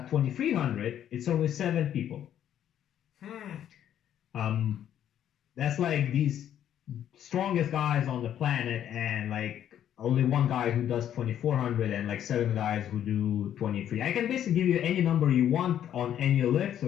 2300, it's only 7 people. That's like these strongest guys on the planet, and like only one guy who does 2400 and like 7 guys who do 23. I can basically give you any number you want on any lift. So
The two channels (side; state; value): right; quieter; 10.4 dB